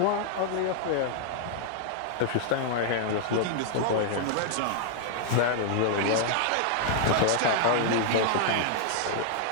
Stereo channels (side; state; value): both; different; correlation -0.01